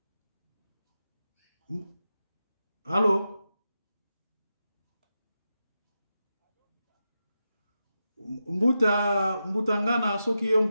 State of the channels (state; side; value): inverted; both; correlation -0.89